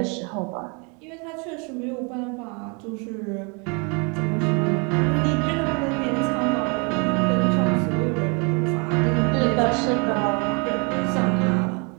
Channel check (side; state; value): left; quieter; 32.9 dB